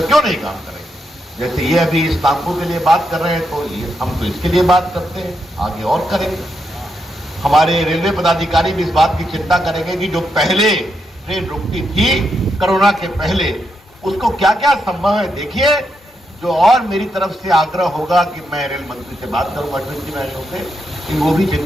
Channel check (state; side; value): normal; both; correlation 0.82